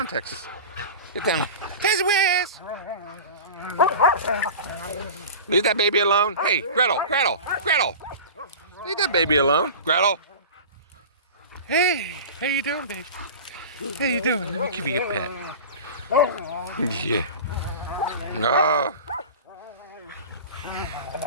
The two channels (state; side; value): inverted; both; correlation -0.33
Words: Texas West. Leave that baby alone. Hey, Gretel. Leave that baby alone. Gretel. Hey, how you doing, baby? How you doing? Let me give you a pet. Yeah. Oh.